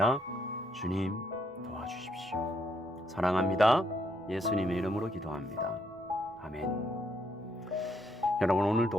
주님, 도와주십시오. 사랑합니다. 예수님의 이름으로 기도합니다. 아멘. 여러분,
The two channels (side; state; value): both; normal; correlation 0.73